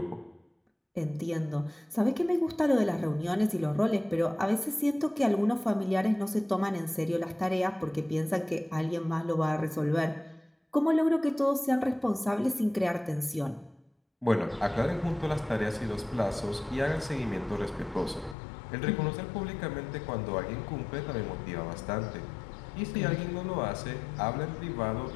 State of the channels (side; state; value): right; drops out; at 18.4 s